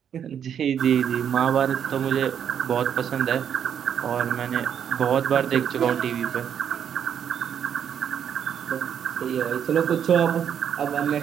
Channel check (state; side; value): quieter; left; 8.5 dB